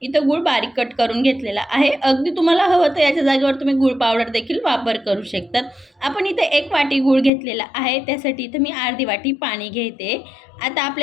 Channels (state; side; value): drops out; right; at 7.3 s